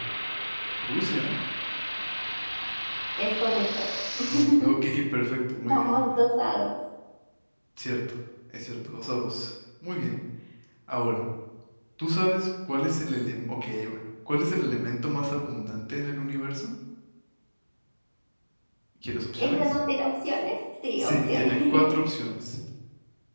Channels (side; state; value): both; inverted; correlation -1.00